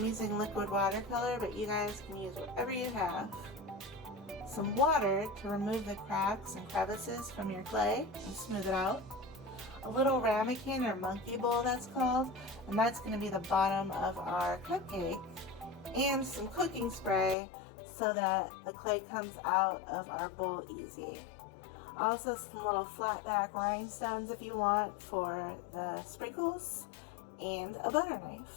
using liquid watercolor, but you guys can use whatever you have. Some water to remove the cracks and crevices from your clay and smooth it out. A little ramekin or monkey bowl, that's called, and that's going to be the bottom of our cupcake. And some cooking spray so that the clay comes out of our bowl easy. Also some little flat back rhinestones if you want for the sprinkles, and a butter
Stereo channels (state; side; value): drops out; right; at 17.4 s